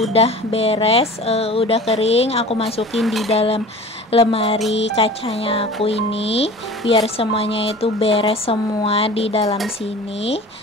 beres, udah kering, aku masukin di dalam lemari kacanya aku ini biar semuanya itu beres semua di dalam sini.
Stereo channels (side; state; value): both; normal; correlation 0.40